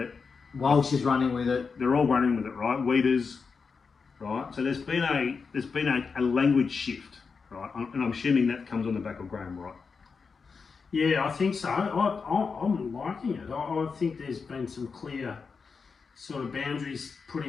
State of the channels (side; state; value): right; quieter; 5.2 dB